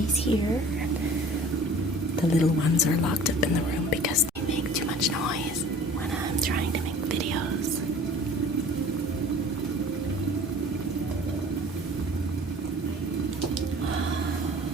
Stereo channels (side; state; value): both; normal; correlation 0.46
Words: here. The little ones are locked up in the room because they make too much noise when I'm trying to make videos.